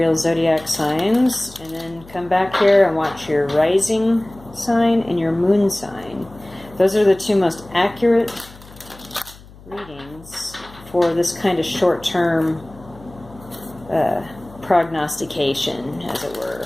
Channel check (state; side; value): noise; left; hum, 21 dB below the sound